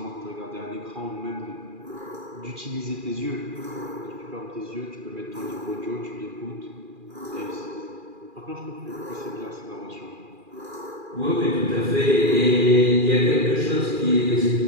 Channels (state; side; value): late; left; 2.4 ms